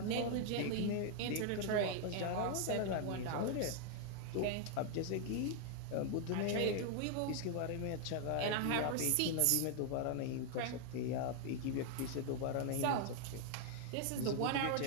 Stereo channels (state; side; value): different; both; correlation 0.00